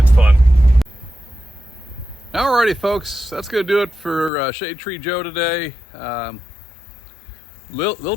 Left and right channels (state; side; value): drops out; right; at 4.3 s